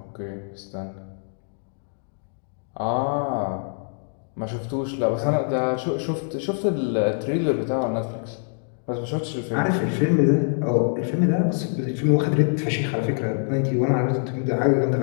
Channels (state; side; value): silent; right; 62 dB below the other